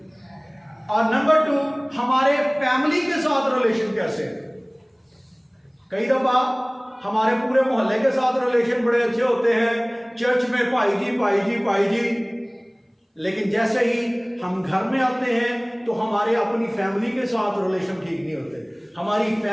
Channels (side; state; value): both; identical; correlation 1.00